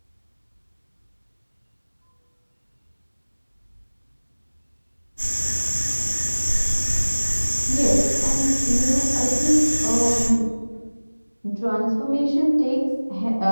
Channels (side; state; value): both; inverted; correlation -1.00